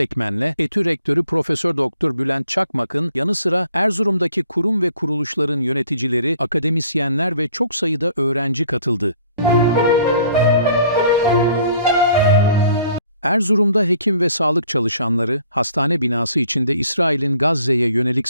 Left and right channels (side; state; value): both; inverted; correlation -0.58